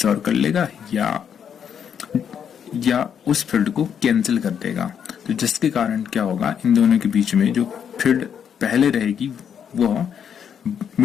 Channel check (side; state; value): right; quieter; 8.1 dB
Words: कर लेगा या उस फील्ड को कैंसिल कर देगा। तो जिसके कारण क्या होगा, इन दोनों के बीच में जो फील्ड पहले रहेगी वो